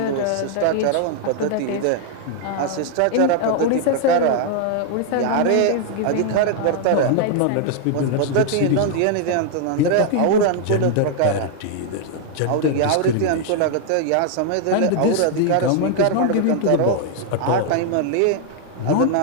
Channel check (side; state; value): both; different; correlation 0.00